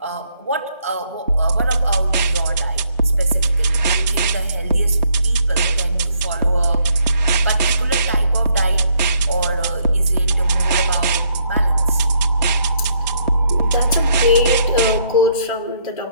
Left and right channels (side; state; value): both; inverted; correlation -0.70